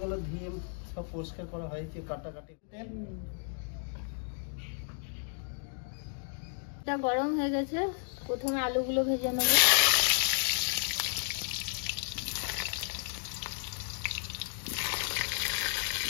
ধুয়ে সব পরিষ্কার করা হয়েছে, কাটাকাটি। এটা গরম হয়ে গেছে, প্রথমে আলুগুলো ভেজে নেবো।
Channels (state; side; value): silent; right; 56 dB below the other